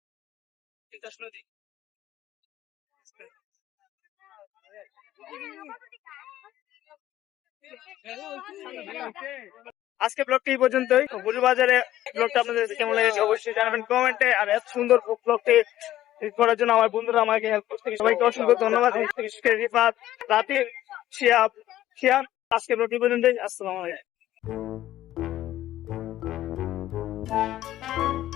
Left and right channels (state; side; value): quieter; right; 13.7 dB